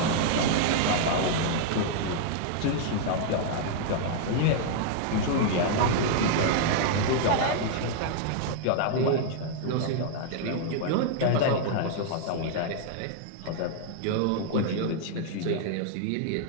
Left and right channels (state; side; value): different; both; correlation -0.01